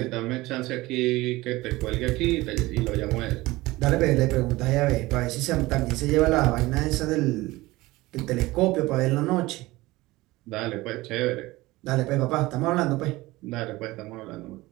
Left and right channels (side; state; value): left; quieter; 19.6 dB